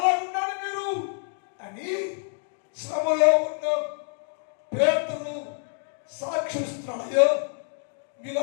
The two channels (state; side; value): silent; right; 60 dB below the other